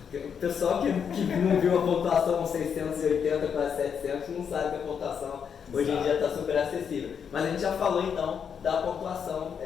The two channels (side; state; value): right; quieter; 7.3 dB